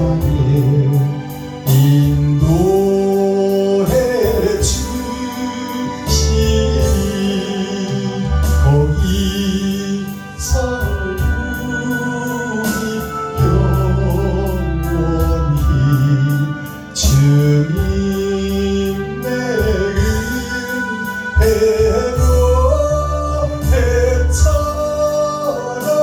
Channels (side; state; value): both; identical; correlation 1.00